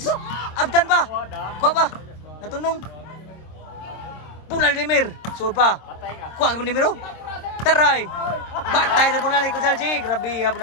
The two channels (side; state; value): right; late; 26 ms